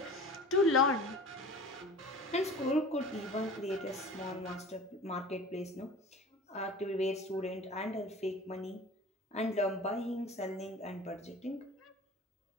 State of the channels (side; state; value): both; normal; correlation 0.40